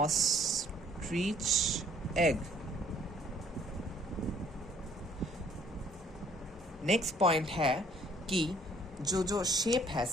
egg. नेक्स्ट पॉइंट है कि जो शेप है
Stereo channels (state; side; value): normal; both; correlation 0.60